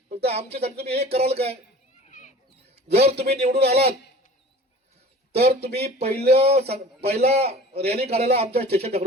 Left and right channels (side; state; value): both; normal; correlation 0.43